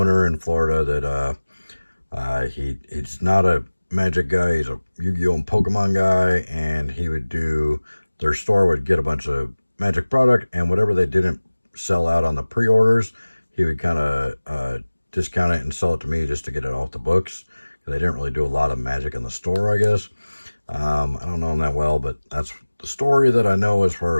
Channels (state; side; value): inverted; both; correlation -1.00